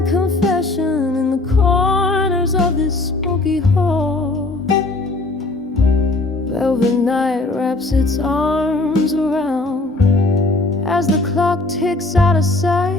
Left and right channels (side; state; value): right; quieter; 3.0 dB